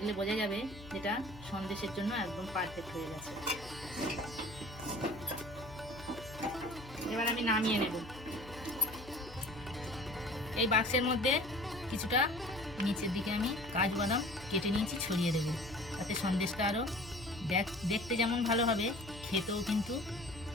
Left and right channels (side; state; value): left; noise; hum, 16 dB below the sound